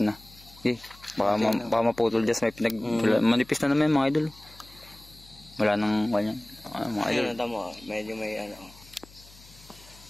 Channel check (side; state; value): left; noise; hum, 23 dB below the sound